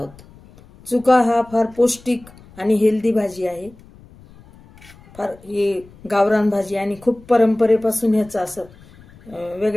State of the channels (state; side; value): noise; left; rumble, 24 dB below the sound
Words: चुका हा फार पौष्टिक आणि हेल्दी भाजी आहे। फार ही गावरान भाजी आणि खूप परंपरेपासून ह्याचं असं